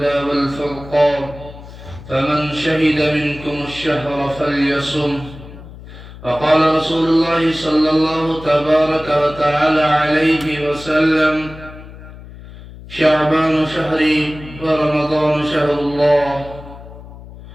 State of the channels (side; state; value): left; noise; hum, 16 dB below the sound